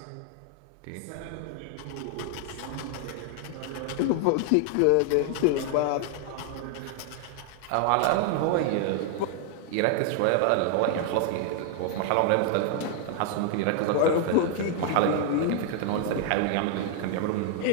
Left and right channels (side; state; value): both; different; correlation 0.00